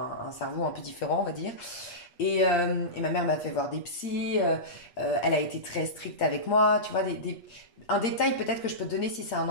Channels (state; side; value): late; right; 8.3 ms